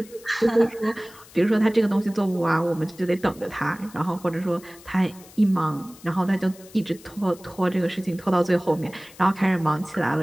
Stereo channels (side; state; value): left; noise; hiss, 22 dB below the sound